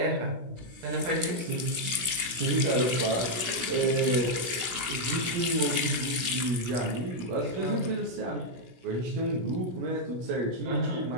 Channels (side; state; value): left; late; 16 ms